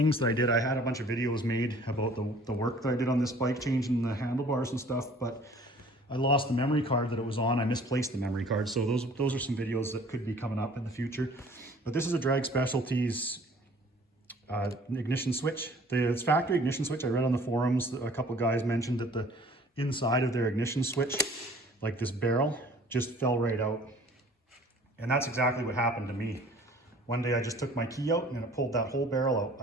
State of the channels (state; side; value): normal; both; correlation 0.51